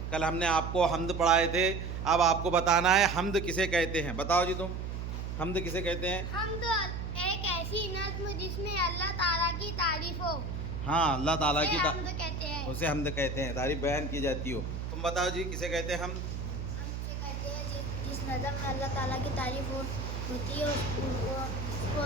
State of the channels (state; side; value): noise; right; hum, 5 dB below the sound